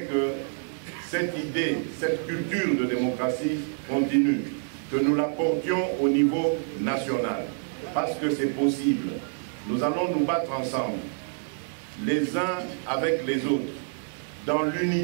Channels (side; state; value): left; silent; 60 dB below the other